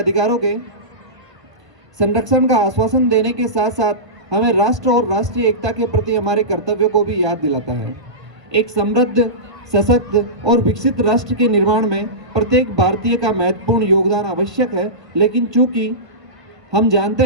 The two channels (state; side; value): late; left; 1.3 ms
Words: के संरक्षण का आश्वासन देने के साथ साथ हमें राष्ट्र और राष्ट्रीय एकता के प्रति हमारे कर्तव्यों को भी याद दिलाता है। एक समृद्ध, सशक्त और विकसित राष्ट्र के निर्माण में प्रत्येक भारतीय का महत्वपूर्ण योगदान आवश्यक है। लेकिन चूंकि हम जानते